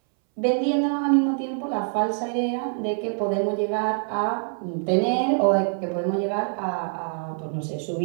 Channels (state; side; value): silent; left; 62 dB below the other